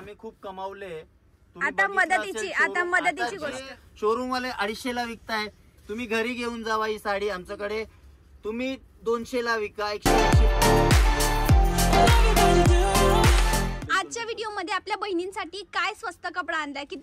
खूप कमावले. आता मदतीची गोष्ट, शोरूम वाले 250 ला विकताय, तुम्ही घरी घेऊन जावा ही साडी आमच्याकडे, तुम्ही 200 ला विका, 180. आजच्या व्हिडिओ मध्ये आपल्या बहिणींसाठी काय स्वस्त कपडा आणलाय,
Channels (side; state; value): both; identical; correlation 1.00